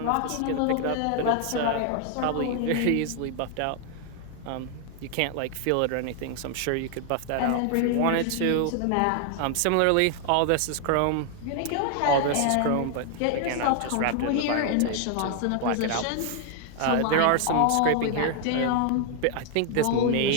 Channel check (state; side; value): different; both; correlation 0.00